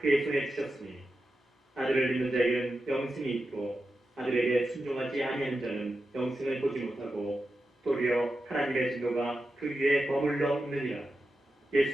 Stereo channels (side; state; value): both; normal; correlation 0.90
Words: 손에 주셨으니 아들을 믿는 자에게는 영생이 있고 아들에게 순종하지 아니하는 자는 영생을 보지 못하고 도리어 하나님의 진노가 그 위에 머물러 있느니라.